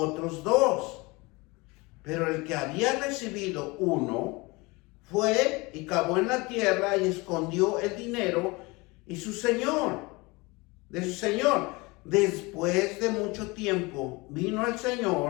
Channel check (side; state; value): right; quieter; 24.7 dB